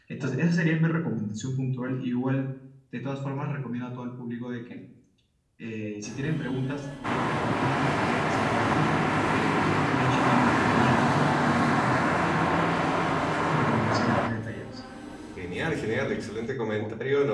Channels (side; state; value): both; identical; correlation 1.00